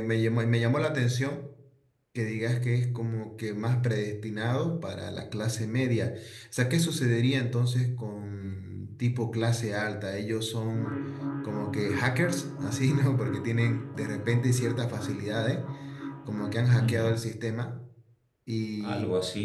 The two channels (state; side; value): identical; both; correlation 1.00